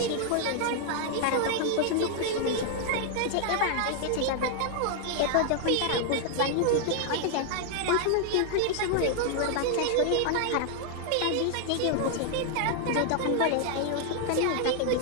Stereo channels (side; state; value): both; different; correlation 0.00